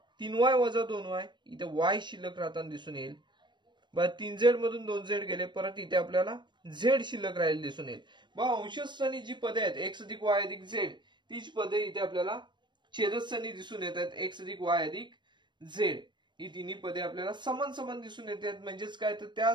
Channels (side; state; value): left; late; 0.22 ms